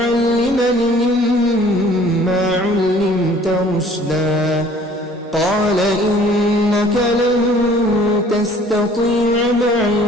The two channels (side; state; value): both; normal; correlation 0.54